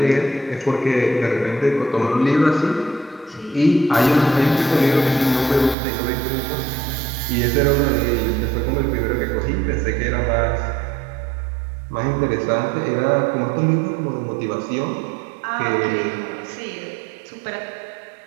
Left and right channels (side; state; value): left; drops out; at 5.8 s